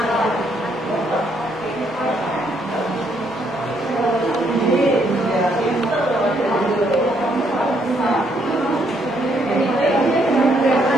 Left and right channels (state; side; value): normal; both; correlation 0.72